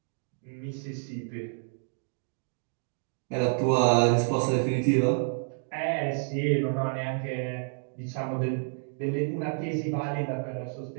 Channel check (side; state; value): left; silent; 58 dB below the other